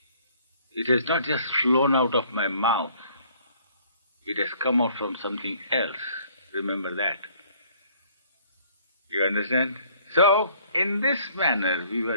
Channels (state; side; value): inverted; both; correlation -0.58